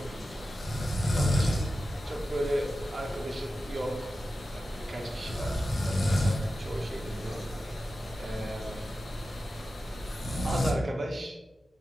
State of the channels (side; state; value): both; normal; correlation 0.93